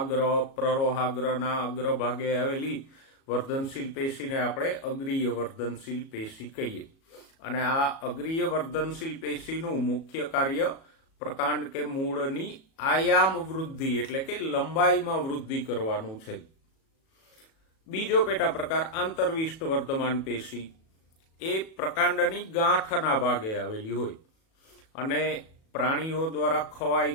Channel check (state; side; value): late; right; 37 ms